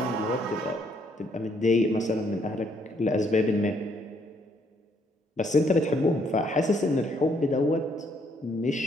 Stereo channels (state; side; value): normal; both; correlation 0.69